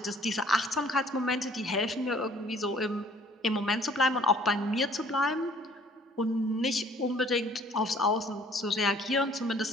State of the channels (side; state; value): both; normal; correlation 0.56